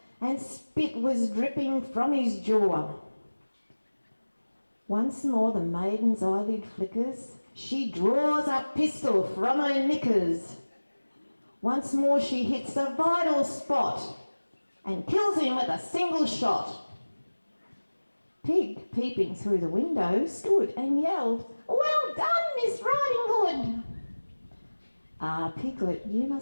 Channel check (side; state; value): both; inverted; correlation -1.00